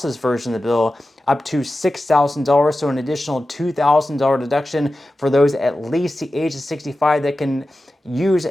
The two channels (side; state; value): both; normal; correlation 0.94